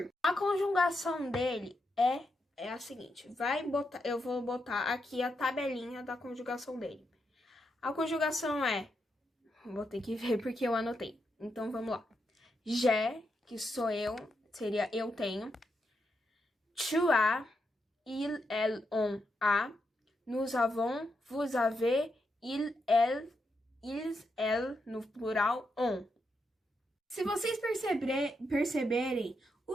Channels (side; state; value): both; normal; correlation 0.83